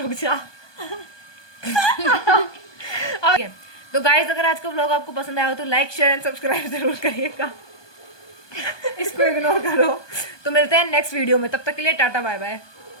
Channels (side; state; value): right; late; 1.2 ms